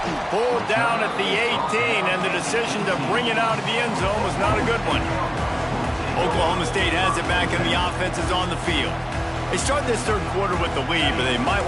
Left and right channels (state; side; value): identical; both; correlation 1.00